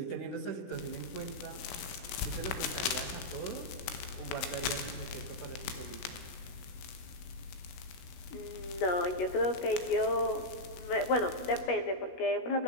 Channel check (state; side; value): late; right; 16 ms